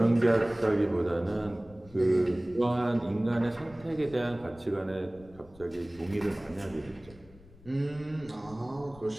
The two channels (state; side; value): noise; left; rumble, 22 dB below the sound